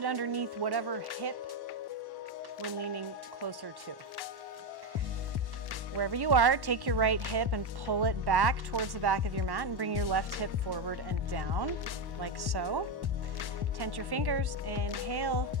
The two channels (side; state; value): left; late; 1.1 ms